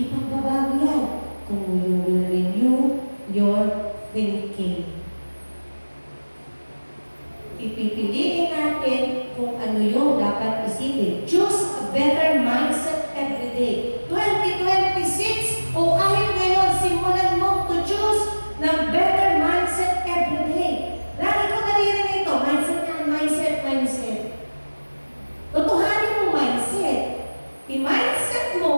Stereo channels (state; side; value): inverted; both; correlation -1.00